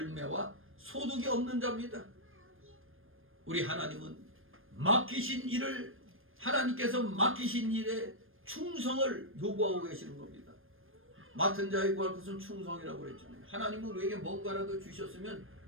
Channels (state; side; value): late; left; 0.59 ms